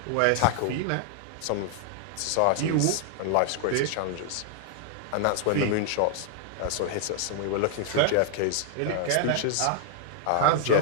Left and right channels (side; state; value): both; different; correlation -0.01